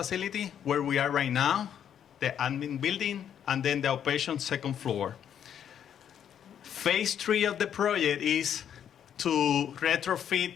where we are right now, the admin building, and then the outpatient second floor. Phase 3 of the project is to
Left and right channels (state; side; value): quieter; right; 9.2 dB